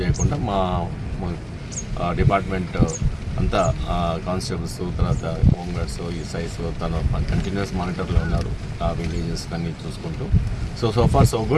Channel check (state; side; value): identical; both; correlation 1.00